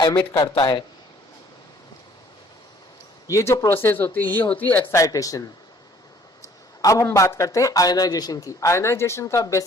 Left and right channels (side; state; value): both; normal; correlation 0.58